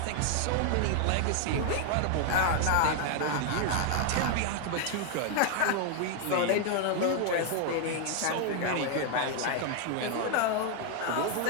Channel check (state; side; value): different; both; correlation 0.00